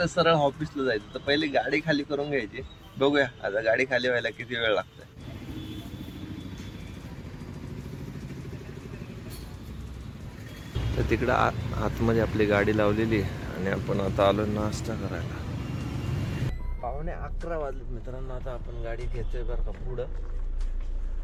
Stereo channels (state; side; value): identical; both; correlation 1.00